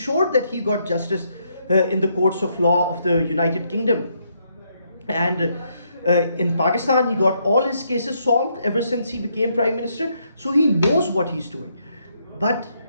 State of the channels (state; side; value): inverted; both; correlation -0.75